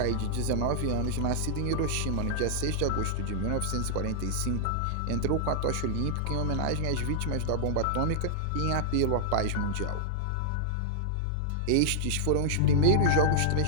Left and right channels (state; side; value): different; both; correlation -0.01